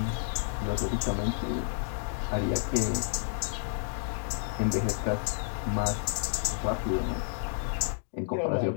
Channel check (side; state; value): right; silent; digital silence